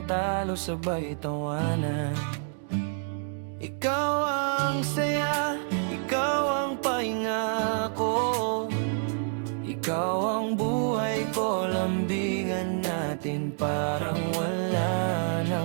talo, sabay tawanan. Ikaw ang saya, ikaw ang pahinga ko, ikaw ang buhay ko, lambingan natin parang wala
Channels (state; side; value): silent; left; digital silence